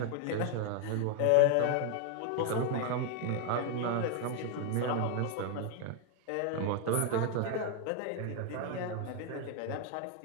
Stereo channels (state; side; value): different; both; correlation 0.01